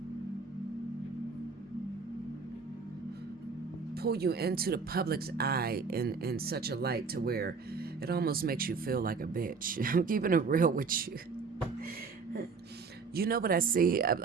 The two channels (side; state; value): left; quieter; 5.0 dB